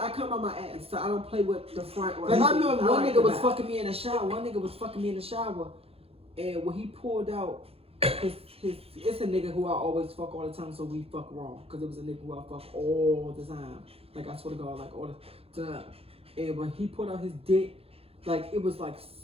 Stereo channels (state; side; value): late; left; 0.28 ms